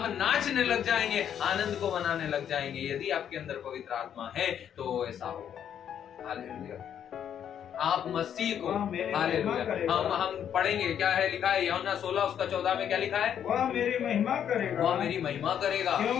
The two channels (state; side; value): quieter; right; 9.2 dB